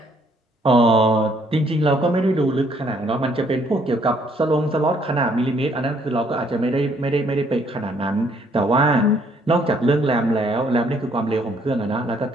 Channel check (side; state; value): both; normal; correlation 0.66